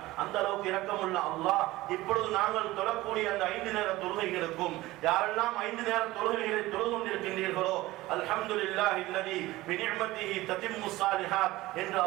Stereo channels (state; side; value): quieter; left; 18.2 dB